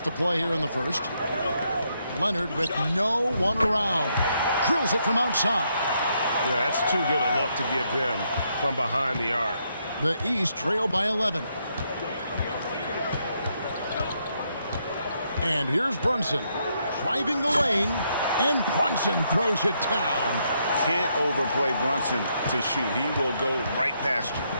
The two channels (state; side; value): inverted; both; correlation -0.76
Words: to play here in the first. Leonard with no one around. Drills it from outside. Yeah, that's too good a look to give them from behind the arc. The East trail by 11. And here's Brunson driving the lane, and Brunson throws it down. Can't overplay Brunson to shoot. He will go right past you.